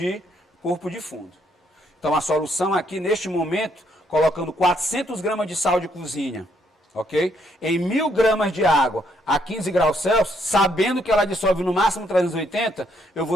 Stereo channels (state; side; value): normal; both; correlation 0.72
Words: corpo de fundo. Então a solução aqui, neste momento, colocando 400 gramas de sal de cozinha, ok? Em 1000 gramas de água a 15 graus Celsius, sabendo que ela dissolve no máximo 380, eu